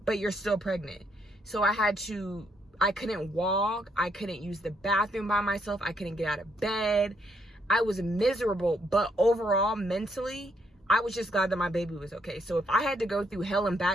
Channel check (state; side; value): normal; both; correlation 0.74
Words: but you're still pregnant. So I couldn't walk. I couldn't use the bathroom by myself. I couldn't get out of bed. I was miserable, but overall, mentally, I was just glad that my baby was okay. So if I had to go through hell and